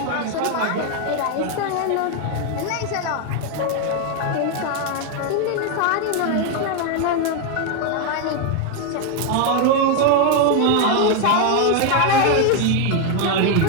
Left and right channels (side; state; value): both; different; correlation 0.01